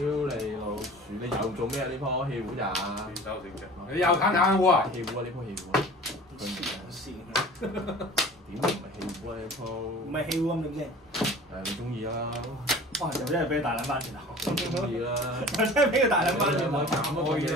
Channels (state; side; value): normal; both; correlation 0.42